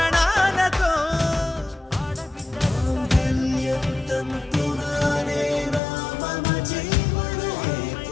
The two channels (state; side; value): drops out; right; at 5.8 s